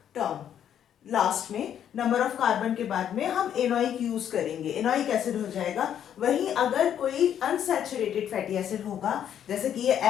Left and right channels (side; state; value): right; quieter; 9.6 dB